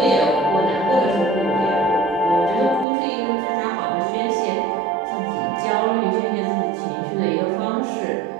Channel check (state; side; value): drops out; left; at 2.9 s